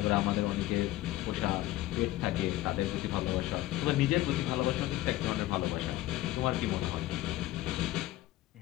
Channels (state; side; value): quieter; right; 16.1 dB